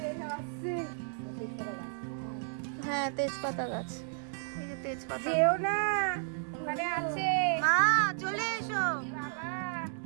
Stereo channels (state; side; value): silent; left; digital silence